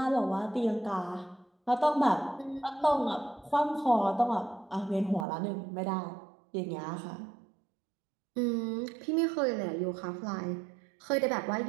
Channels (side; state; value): left; drops out; at 5.2 s